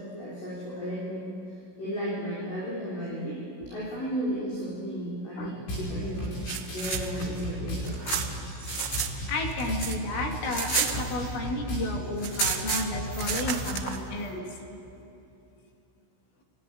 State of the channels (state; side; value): late; right; 16 ms